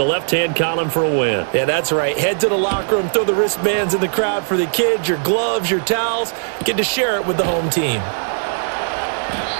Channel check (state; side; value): silent; left; 67 dB below the other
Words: left-hand column for a win. Yeah, that's right. Head to the locker room, throw the wristbands in the crowd for the kids, your gloves, your towels. Get to share it with the home team.